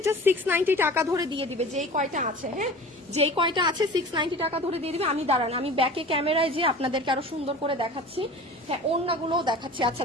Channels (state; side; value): normal; both; correlation 0.39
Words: জাস্ট 690 টাকা ধরে দিয়ে দিবে, যেই কয়টা আছে। হ্যাঁ, যেই কয়টা আছে 690 টাকা ধরে দিয়ে দিবে। আমি দাঁড়ান, আমি ব্যাকে ক্যামেরায় যে আপনাদেরকে আরো সুন্দর করে দেখাচ্ছি। হ্যাঁ, ওড়নাগুলোও দেখাচ্ছি। আচ্ছা,